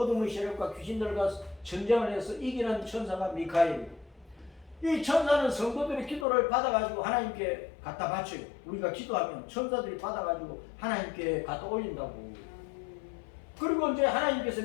세력과 귀신들과 전쟁을 해서 이기는 천사가 미카엘. 이 천사는 성도들의 기도를 받아가지고 하나님께 갖다 바쳐요. 우리가 기도하면 천사들이 받아가지고 하나님께 갖다 올린다고. 그리고 이제 하나님께서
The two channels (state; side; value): drops out; right; at 6.2 s